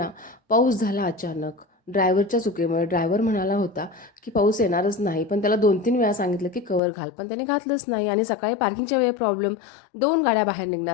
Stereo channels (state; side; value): drops out; right; at 6.8 s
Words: पाऊस झाला अचानक. ड्रायव्हरच्या चुकीमुळे. ड्रायव्हर म्हणाला होता की पाऊस येणारच नाही, पण त्याला 2-3 वेळा सांगितलं की कवर घाल, पण त्याने घातलंच नाही. आणि सकाळी पार्किंगच्या वेळी प्रॉब्लेम. 2 गाड्या बाहेर